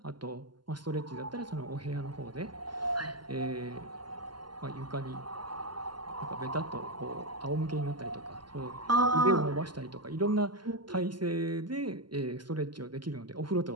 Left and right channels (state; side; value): late; left; 0.71 ms